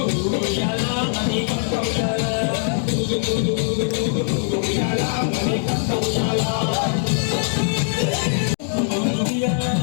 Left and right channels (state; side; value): silent; right; 58 dB below the other